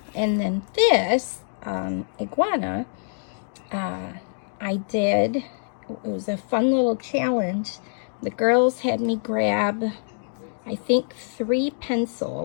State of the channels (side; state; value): right; silent; digital silence